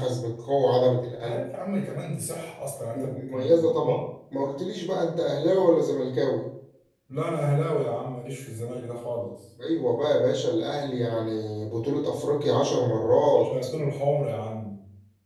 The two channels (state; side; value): identical; both; correlation 1.00